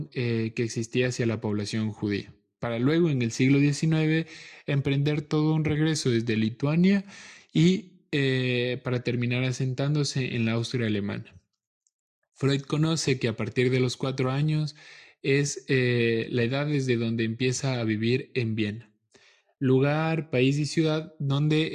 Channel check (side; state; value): both; identical; correlation 1.00